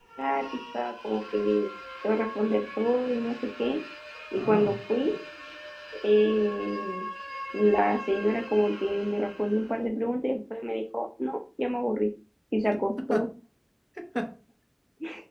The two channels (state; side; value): identical; both; correlation 1.00